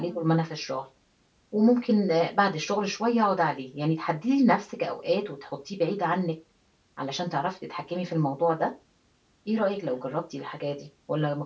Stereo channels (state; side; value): identical; both; correlation 1.00